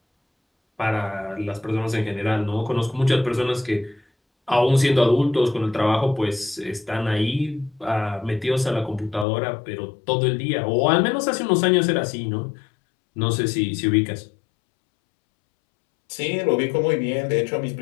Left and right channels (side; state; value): right; drops out; at 9.2 s